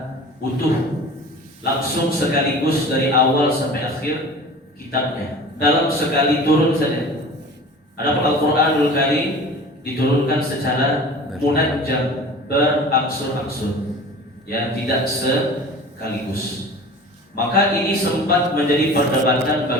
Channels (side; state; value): both; normal; correlation 0.40